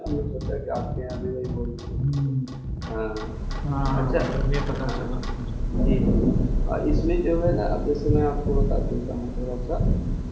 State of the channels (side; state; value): both; identical; correlation 1.00